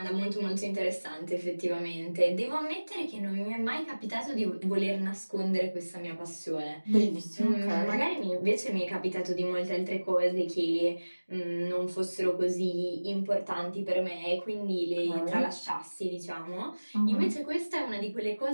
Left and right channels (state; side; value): inverted; both; correlation -1.00